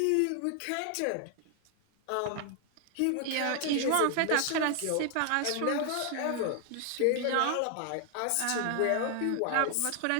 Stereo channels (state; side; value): different; both; correlation 0.00